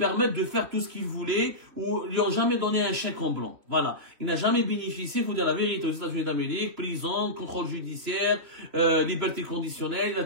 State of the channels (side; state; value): left; late; 3.1 ms